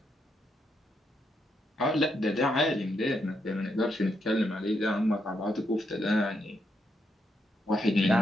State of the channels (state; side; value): normal; both; correlation 0.80